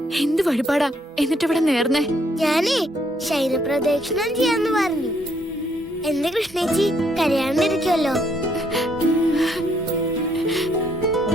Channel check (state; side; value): normal; both; correlation 0.70